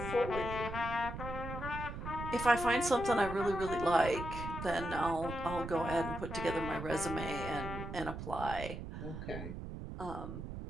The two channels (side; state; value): right; noise; rumble, 7 dB below the sound